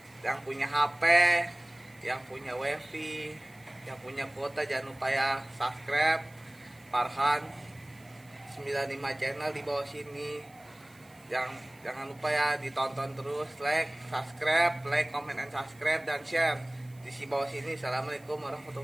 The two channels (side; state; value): right; noise; hiss, 28 dB below the sound